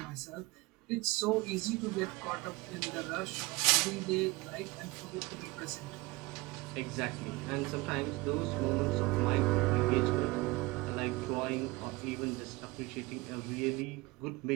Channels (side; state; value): left; quieter; 22.7 dB